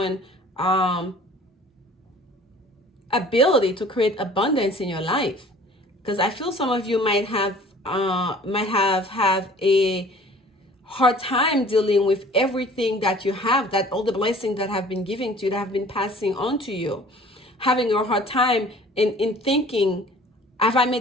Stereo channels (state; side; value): normal; both; correlation 0.49